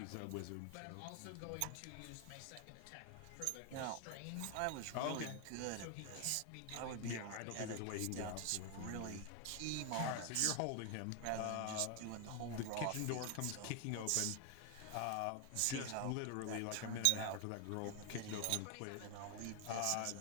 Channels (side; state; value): both; different; correlation 0.00